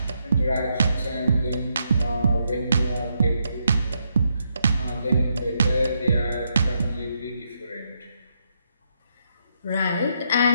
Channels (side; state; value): both; inverted; correlation -0.79